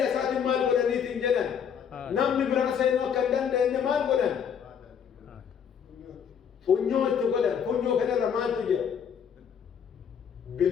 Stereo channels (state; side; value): quieter; right; 7.7 dB